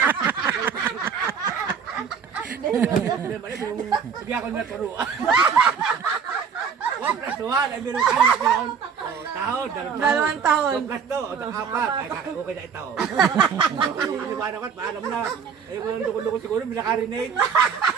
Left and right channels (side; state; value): left; quieter; 6.7 dB